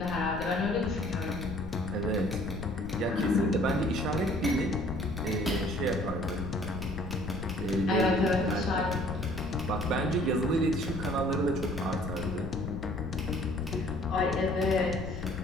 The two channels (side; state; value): left; noise; rumble, 7 dB below the sound